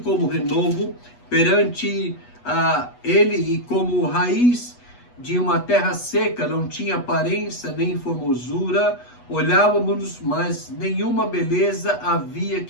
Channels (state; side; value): late; right; 8.2 ms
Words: como renovo perante ele e como raiz de uma terra seca, não tinha aparência nem formosura, olhávamos, mas nenhuma beleza havia